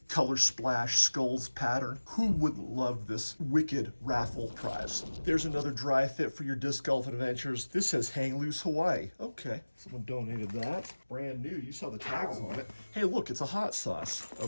color splash skulls pattern, who wouldn't love this wicked raffle prize? There's another dry fit for your disc golf adventures. This says Hang Loose Hawaii. Okay, someone donated that. Brand new, you saw the tags on it. Hey, look, it's a hot sauce.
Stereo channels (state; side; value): inverted; both; correlation -1.00